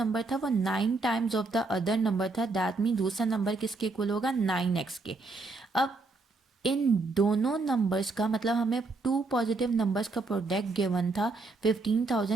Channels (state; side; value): quieter; left; 3.5 dB